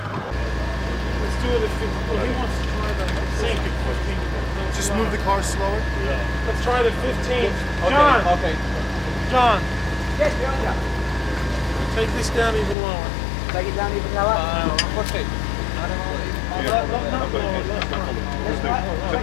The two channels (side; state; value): right; drops out; at 12.8 s